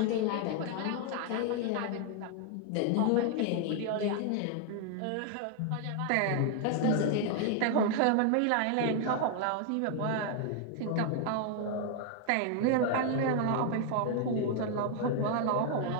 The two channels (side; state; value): both; different; correlation 0.00